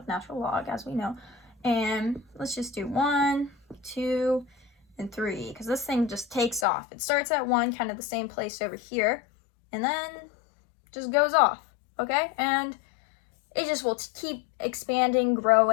natural log, as we know. And let's just do 1, 2, and 3, because this thing just takes off. It starts at 1, kind of the same place over here, and then just goes off, okay? And it just will keep expanding,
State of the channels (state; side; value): drops out; right; at 6.7 s